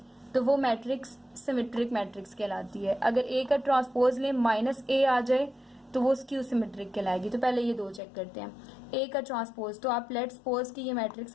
तो वो मैट्रिक्स सिमेट्रिक मैट्रिक्स कहलाती है। अगर ए का ट्रांसपोज लें माइनस ए आ जाए तो वो स्क्यू सिमेट्रिक कहलाएगी। तो पहले ये दो चेक करते हैं। ए का ट्रांसपोज, तो आप लेट्स सपोज कि ये मैट्रिक्स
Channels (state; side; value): drops out; right; at 8.0 s